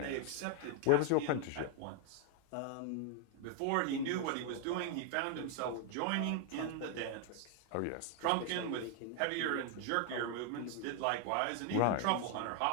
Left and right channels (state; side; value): different; both; correlation 0.00